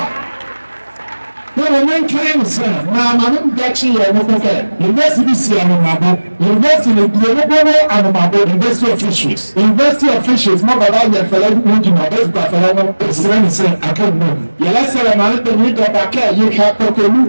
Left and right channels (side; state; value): both; inverted; correlation -1.00